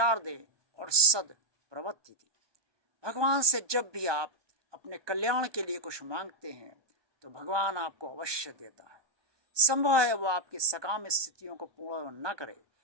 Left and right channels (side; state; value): left; late; 1.2 ms